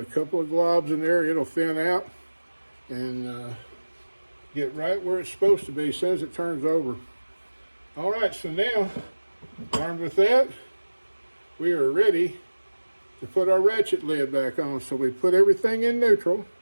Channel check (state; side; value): inverted; both; correlation -1.00